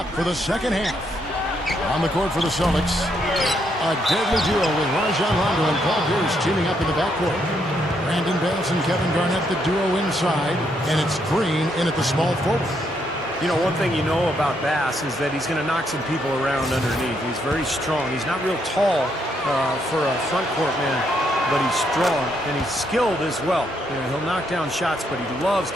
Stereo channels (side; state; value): both; normal; correlation 0.75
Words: for the second half. On the court for the Celtics, a deadly duo with Rajon Rondo and Paul Pierce teaming up in the backcourt. Brandon Bass and Kevin Garnett, the duo inside, and it's Green in at the small forward. You know, one thing you know about Bass is that he's going to knock some people around underneath. He's very strong. He's not real tall for a front court man, but he's strong and he's skilled as well. You know, he'll knock down shots, but he loves